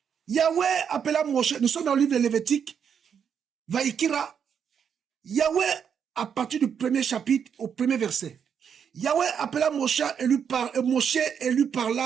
Yahweh appela Moshe, nous sommes dans le livre de Lévitique, Vaïkira, Yahweh, à partir du premier chapitre, au premier verset, Yahweh appela Moshe et lui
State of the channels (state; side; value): quieter; left; 7.5 dB